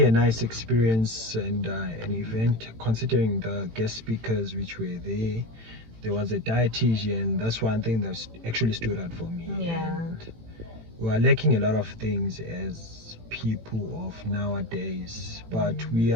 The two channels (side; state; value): left; late; 18 ms